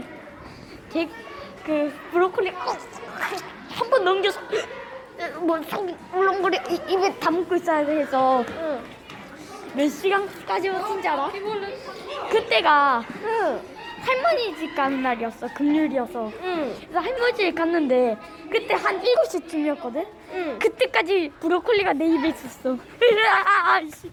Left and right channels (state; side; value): identical; both; correlation 1.00